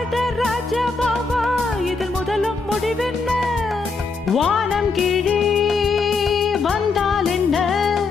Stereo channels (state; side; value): quieter; right; 4.2 dB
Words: ராஜா பாபா இதில் முதலும் முடிவென்ன. வானம் கீழே வந்தால் என்ன,